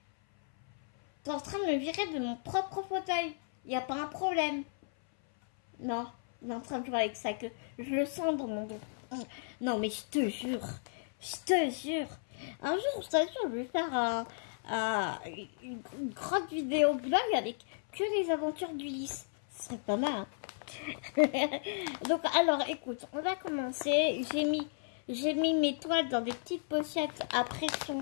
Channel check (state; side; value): silent; right; 55 dB below the other